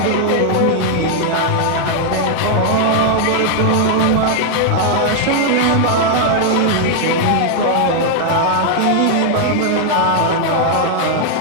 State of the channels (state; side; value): different; both; correlation 0.00